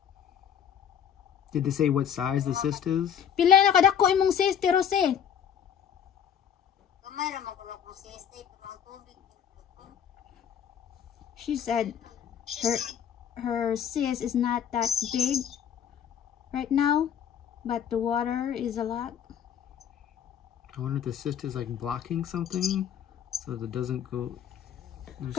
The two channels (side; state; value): right; quieter; 8.6 dB